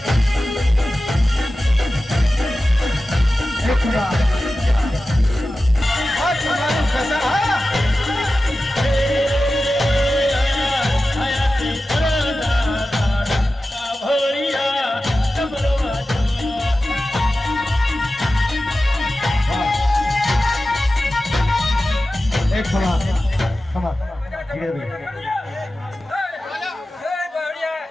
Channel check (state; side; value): normal; both; correlation 0.94